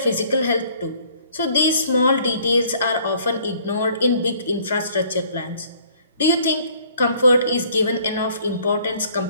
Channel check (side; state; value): both; inverted; correlation -0.59